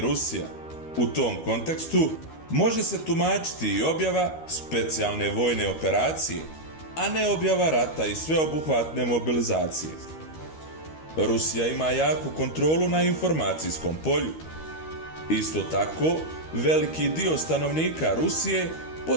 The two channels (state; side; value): late; right; 13 ms